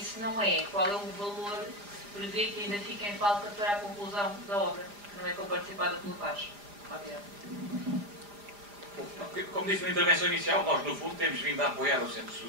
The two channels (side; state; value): left; late; 4.9 ms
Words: se não é, qual é o valor que se prevê que ainda fica em falta para a conclusão da obra, que não é comparticipada pelo Paz? Obrigado. Como disse na intervenção inicial, nós no fundo temos vindo a apoiar o Centro